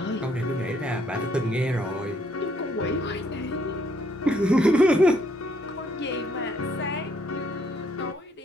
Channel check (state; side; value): normal; both; correlation 0.68